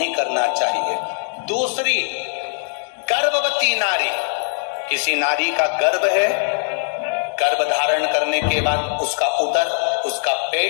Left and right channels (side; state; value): right; silent; digital silence